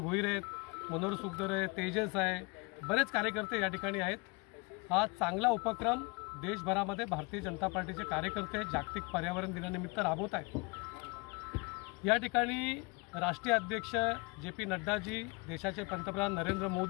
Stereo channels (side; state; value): right; quieter; 28.7 dB